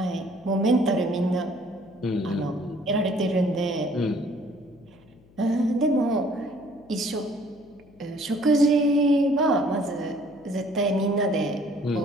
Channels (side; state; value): left; noise; hum, 27 dB below the sound